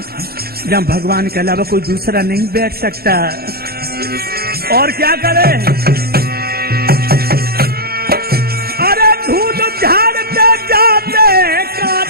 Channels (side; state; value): left; late; 0.45 ms